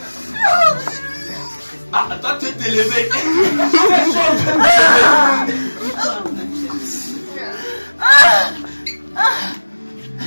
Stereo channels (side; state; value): both; inverted; correlation -1.00